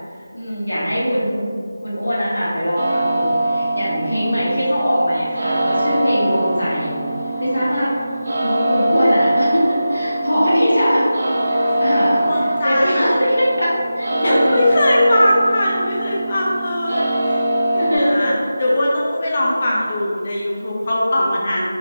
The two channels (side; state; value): both; inverted; correlation -0.93